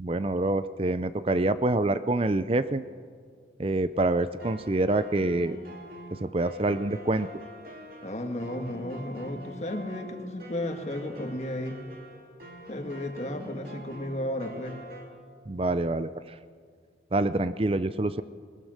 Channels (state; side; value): normal; both; correlation 0.55